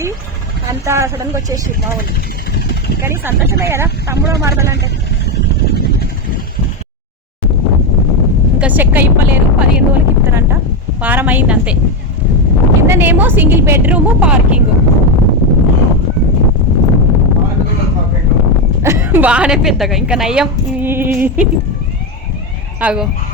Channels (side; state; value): both; normal; correlation 0.10